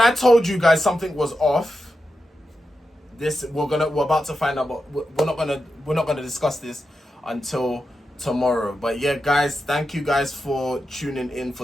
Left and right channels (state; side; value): normal; both; correlation 0.89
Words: I told you guys something was off, we're about to find out, but we're not gonna discuss this until tomorrow. But yeah, guys, thank you guys for tuning in